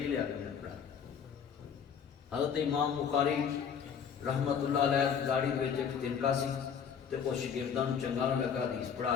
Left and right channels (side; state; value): right; quieter; 7.3 dB